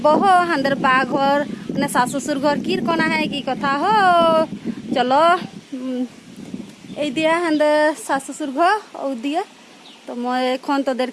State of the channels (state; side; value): identical; both; correlation 1.00